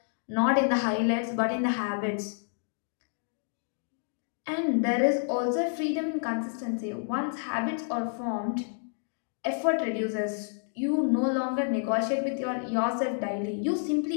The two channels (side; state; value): right; silent; digital silence